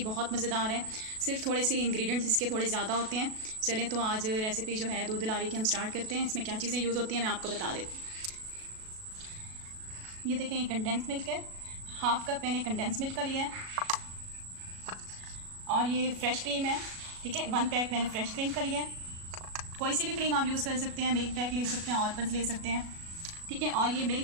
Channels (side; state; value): left; late; 37 ms